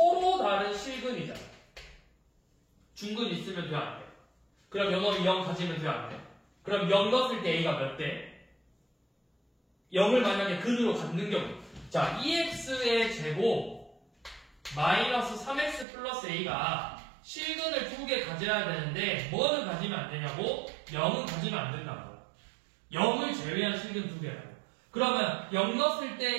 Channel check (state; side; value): drops out; left; at 15.9 s